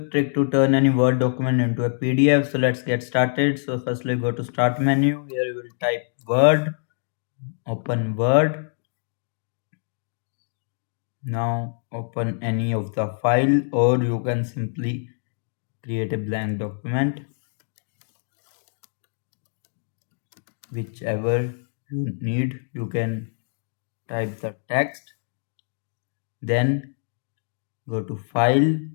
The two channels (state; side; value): silent; right; digital silence